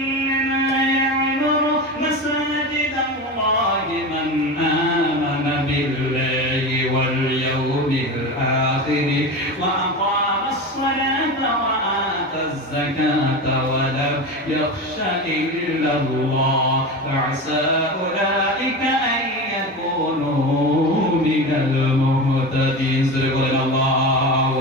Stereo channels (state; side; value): normal; both; correlation 0.25